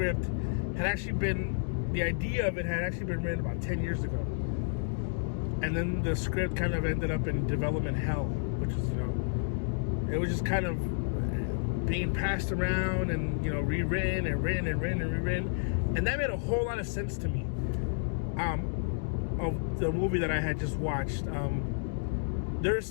had actually been, the idea of it had actually been written about 10 years ago. And then the script kind of ended up in development hell, which is, it was just kind of being passed around and, rewritten and written and written and rewritten. And that made a whole lot of sense to me, of the movie that I had just watched. There's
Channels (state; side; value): silent; right; digital silence